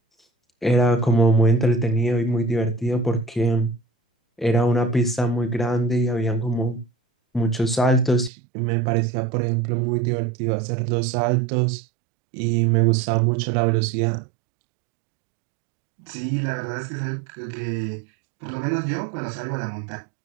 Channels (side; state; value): left; drops out; at 8.3 s